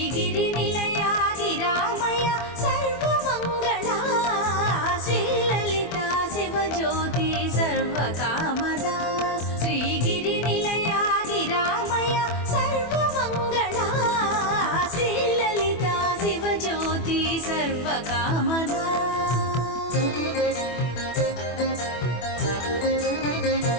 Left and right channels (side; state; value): right; late; 24 ms